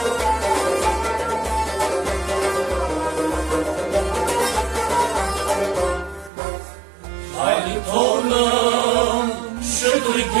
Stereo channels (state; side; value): drops out; left; at 6.3 s